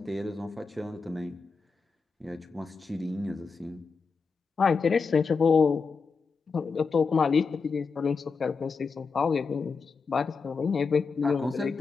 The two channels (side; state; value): right; quieter; 4.9 dB